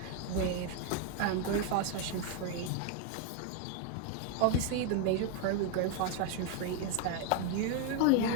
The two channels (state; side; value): different; both; correlation 0.01